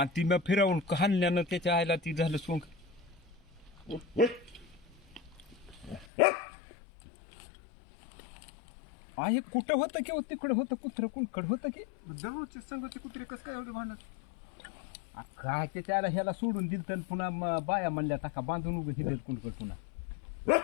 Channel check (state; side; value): drops out; right; at 6.1 s